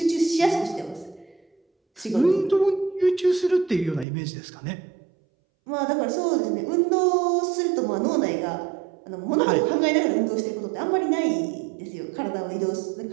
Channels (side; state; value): left; drops out; at 4.0 s